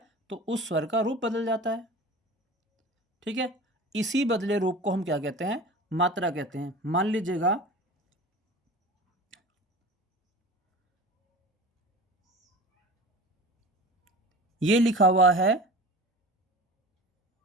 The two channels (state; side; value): normal; both; correlation 0.37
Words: तो उस स्वर का रूप बदल जाता है। ठीक है, इसी बदले रूप को हम क्या कहते हैं? मात्रा कहते हैं। मान लीजिएगा, ये लिखा हुआ है,